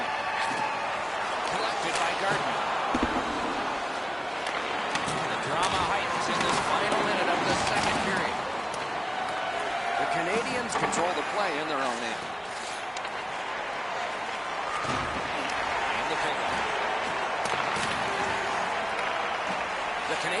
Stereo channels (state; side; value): identical; both; correlation 1.00